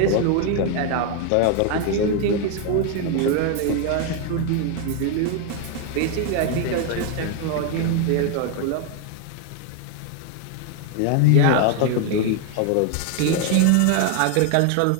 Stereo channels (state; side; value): different; both; correlation 0.01